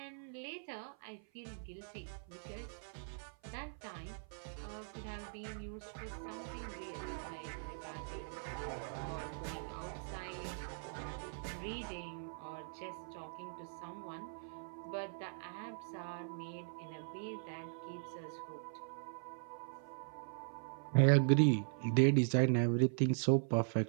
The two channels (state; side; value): silent; left; 51 dB below the other